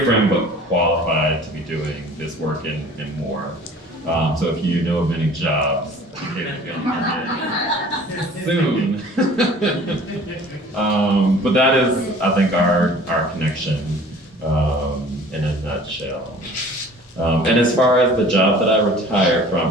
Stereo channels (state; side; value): normal; both; correlation 0.47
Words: friend, but qualified to be doing this work and more. So if you know of any jobs, soon. But that is, I think, our connection in a nutshell. And as far as the job that I retired